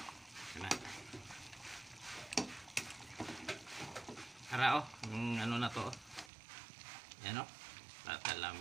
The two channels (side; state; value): left; drops out; at 6.3 s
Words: Na. Ara o. Ano na to o. Yan o.